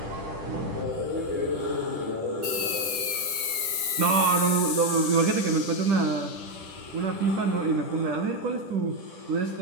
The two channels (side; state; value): left; late; 10 ms